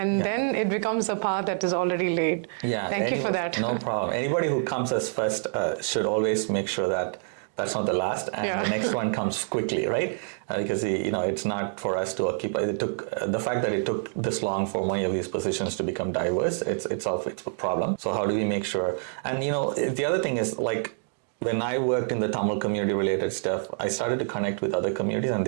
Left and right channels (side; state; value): left; silent; digital silence